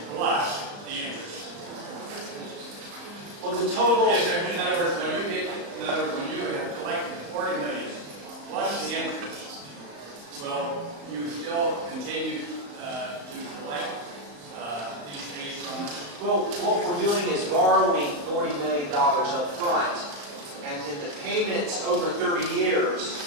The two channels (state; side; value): late; left; 34 ms